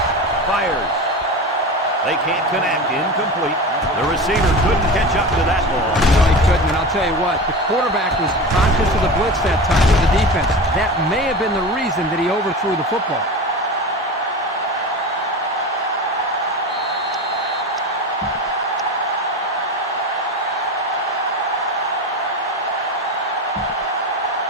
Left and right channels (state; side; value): normal; both; correlation 0.28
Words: fires. They can't connect. Incomplete. The receiver couldn't catch up to that ball. No, he couldn't, and I'll tell you what, the quarterback was conscious of the blitz that time with the defense. That may have been the reason that he overthrew the football.